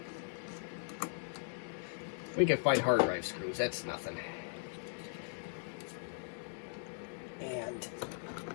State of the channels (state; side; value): silent; right; digital silence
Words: We can find hard drive screws, that's nothing. And